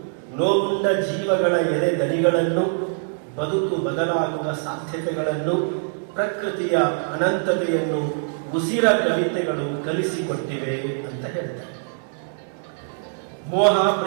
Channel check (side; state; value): left; silent; digital silence